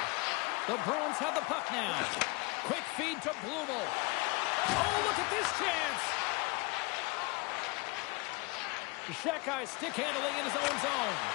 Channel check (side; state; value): right; quieter; 26.3 dB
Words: The Bruins have the puck now. Quick feed to Blumel. Oh, look at this chance. Shekai stick handling in his own zone.